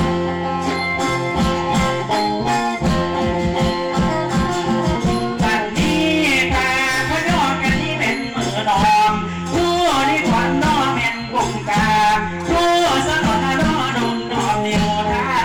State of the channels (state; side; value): identical; both; correlation 1.00